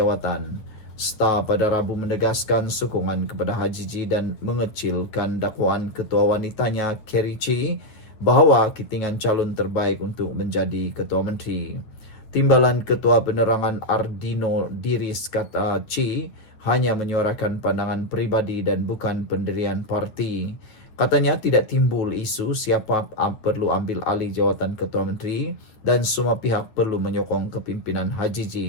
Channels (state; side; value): late; right; 9.3 ms